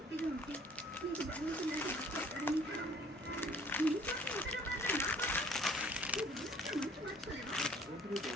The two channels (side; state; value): both; normal; correlation 0.55